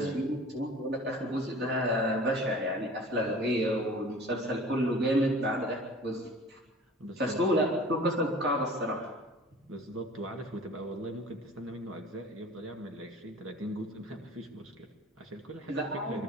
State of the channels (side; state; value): both; normal; correlation 0.44